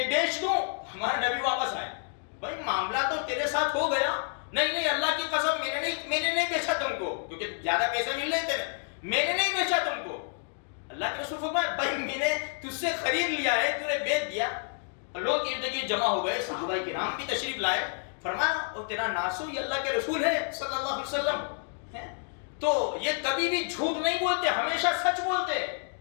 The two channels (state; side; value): silent; right; 56 dB below the other